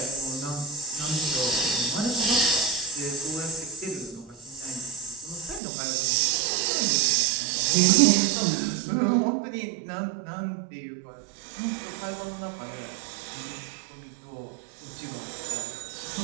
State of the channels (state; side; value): drops out; left; at 5.6 s